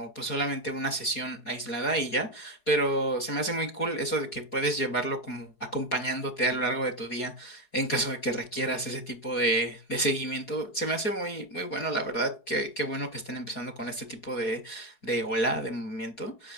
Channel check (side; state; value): right; late; 4.7 ms